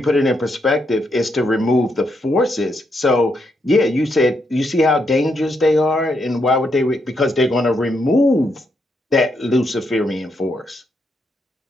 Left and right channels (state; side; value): normal; both; correlation 0.79